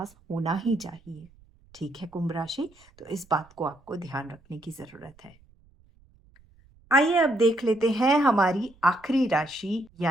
होना ही चाहिए। ठीक है कुंभ राशि, तो इस बात को आपको ध्यान रखने की ज़रूरत है। आइए अब देख लेते हैं हमारी आखिरी राशि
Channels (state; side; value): noise; right; rumble, 29 dB below the sound